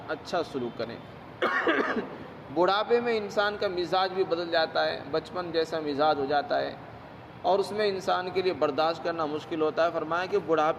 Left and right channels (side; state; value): both; identical; correlation 1.00